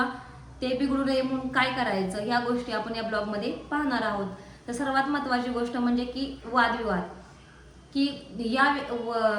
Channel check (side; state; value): both; identical; correlation 1.00